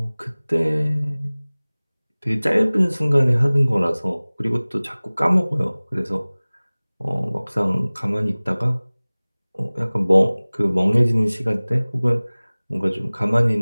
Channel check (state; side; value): inverted; both; correlation -1.00